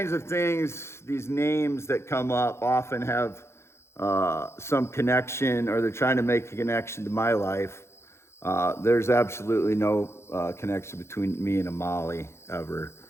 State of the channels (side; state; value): right; late; 0.13 ms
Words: of things, these names that come up often have some connection, or they're trying to make a connection to my life. There's absolutely no connection between me and a Molly ever.